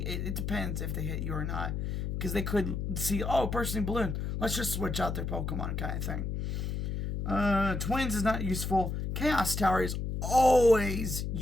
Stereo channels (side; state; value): left; noise; hum, 2 dB below the sound